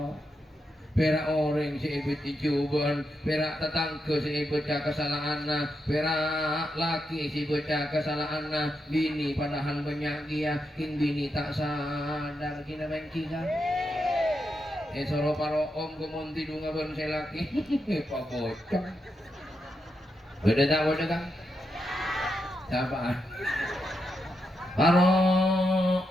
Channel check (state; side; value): normal; both; correlation 0.85